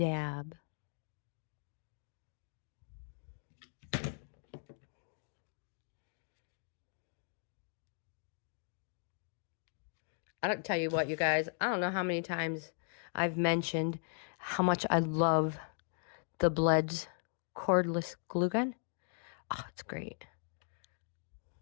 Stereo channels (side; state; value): right; silent; 52 dB below the other